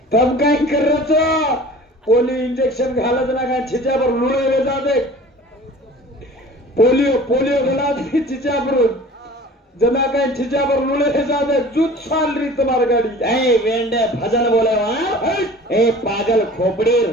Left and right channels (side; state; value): both; normal; correlation 0.43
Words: तब काय करायचं पोलिओ इंजेक्शन घालत ना काय छिच्यावर लुळे जाते पोलिओ घाला छिच्यावर जना काय छिच्यावर लुळे जाते जूत साल री तुम्हारी गाडी ए वेंडे भजन बोले वहां ए पागल खोपड़ीर